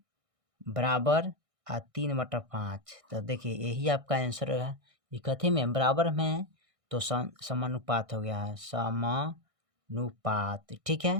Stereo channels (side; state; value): left; late; 1.6 ms